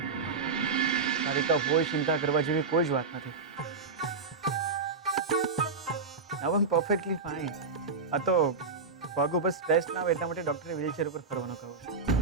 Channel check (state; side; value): quieter; left; 4.5 dB